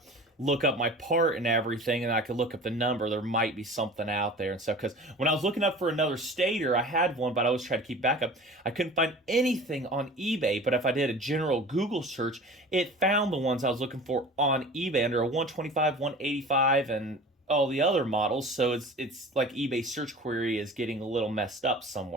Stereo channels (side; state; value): both; normal; correlation 0.40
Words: look up my part and everything, and I could look up the number. There might be something out there and stuff. Because when I was looking up for another Stator, I had one, but I always tried to keep backup. I couldn't find anything on eBay, but if I did a general Google search, it found the ones I was looking for on eBay under a 125, 185, and all the other models. So it's like eBay search query is getting a little messed up